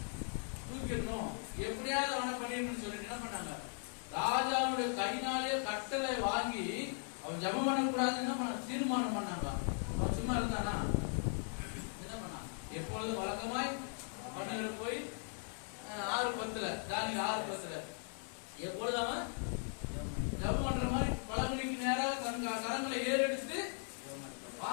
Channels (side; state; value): right; silent; 52 dB below the other